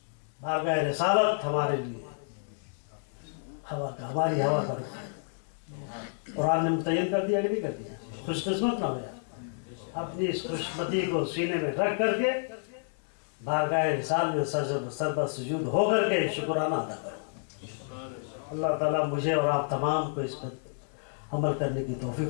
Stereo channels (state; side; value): silent; right; digital silence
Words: بارگاہ رسالت ہمارے لیے ہوا کا, ہماری ہوا کا رخ ہے. قرآن نے متعین کر دیا کہ نہیں کر دیا؟ خوش قسمت نہ ہو جائے. اپنی اس خوشمتی کو سینے میں رکھ کر کے بارگاہ رسال میں سربہ سجود ہو کر کے شکرانہ ادا کرو. اللہ تعالیٰ مجھے اور آپ تمام کو اس پر عمل کرنے کی